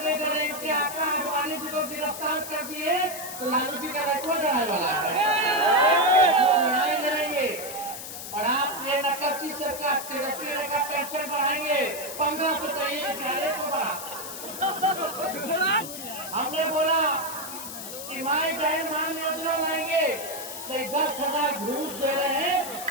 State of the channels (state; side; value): noise; left; hiss, 9 dB below the sound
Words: डरे कि आका अडवाणी जी को गिरफ्तार कर दिए तो लालू जी का रखवा डराने वाला है न्याय करेंगे और आप ये नकलची सरकार तेजस्वी का पेंशन बढ़ाएंगे 1500 तो ये ज्यादा को बढ़ा हमने बोला कि माए बहन मान योजना लाएंगे तो 10,000 घूस दे रहे हैं